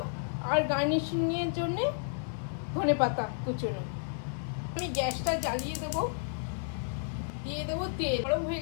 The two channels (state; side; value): silent; right; digital silence